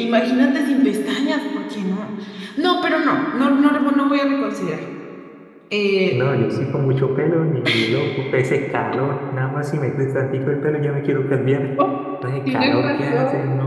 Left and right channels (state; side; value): identical; both; correlation 1.00